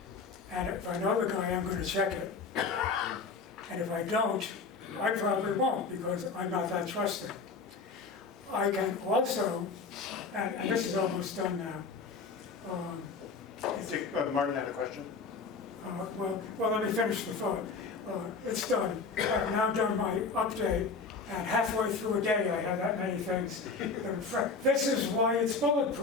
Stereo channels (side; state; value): right; quieter; 4.6 dB